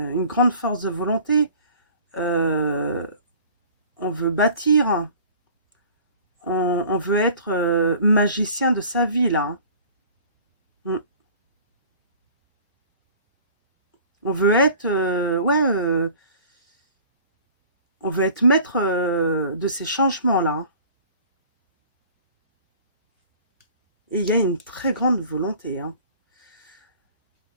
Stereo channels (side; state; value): both; inverted; correlation -0.46